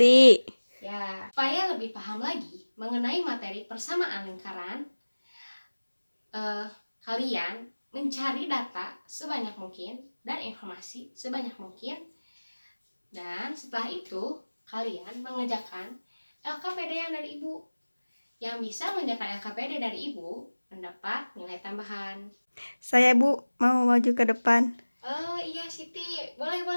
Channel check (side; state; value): both; inverted; correlation -1.00